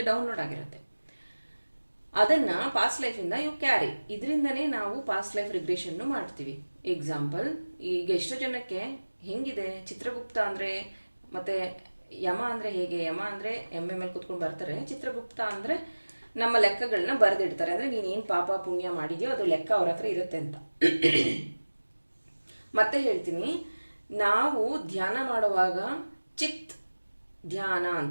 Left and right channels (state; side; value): inverted; both; correlation -1.00